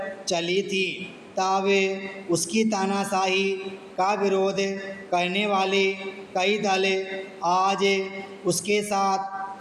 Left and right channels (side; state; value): both; identical; correlation 1.00